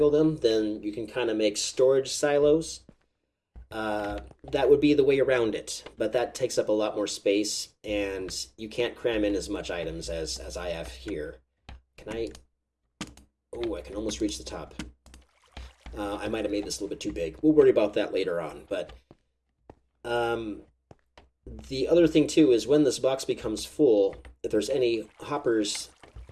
them, then you can kind of make storage silos. That would be the way around it, but that takes up a lot more space, and you can't cram in as much items as I have here. Can I? Oh, I can almost reach the top. I might have made this a little bit too big. We'll worry about that later on, but the other thing too is when this box becomes full, if there's any hoppers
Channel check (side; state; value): both; identical; correlation 1.00